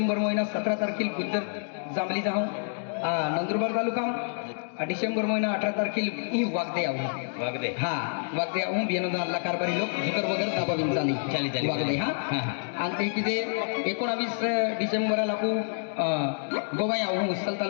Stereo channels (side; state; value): right; silent; digital silence